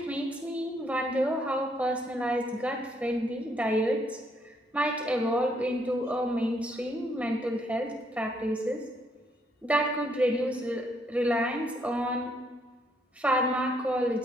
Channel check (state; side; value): normal; both; correlation 0.71